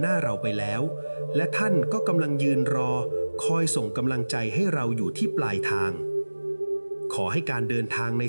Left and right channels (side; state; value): both; inverted; correlation -1.00